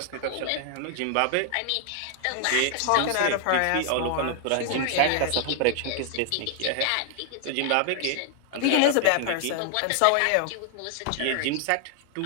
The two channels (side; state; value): both; different; correlation 0.00